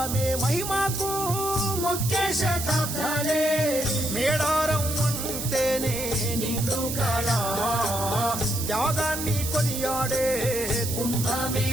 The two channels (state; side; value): noise; right; hiss, 5 dB below the sound